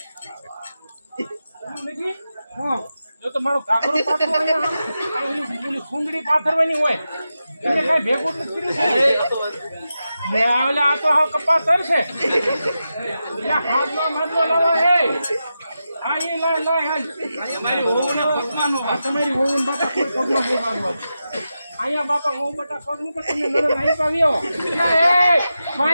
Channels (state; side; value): inverted; both; correlation -0.90